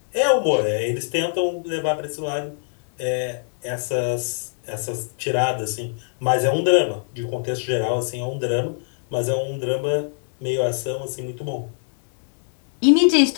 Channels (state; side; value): silent; right; digital silence